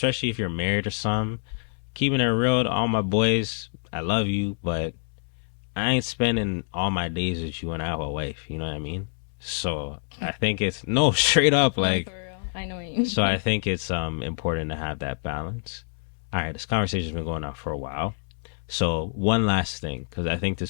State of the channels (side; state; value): right; silent; 61 dB below the other